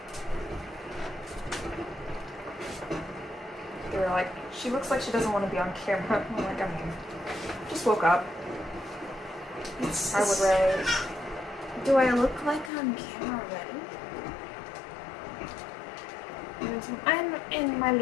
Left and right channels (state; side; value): drops out; right; at 12.7 s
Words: She looks like she doesn't want to be on camera. I'm like, I mean, just woke up. I would rather. Do I look like on camera already? I'm in my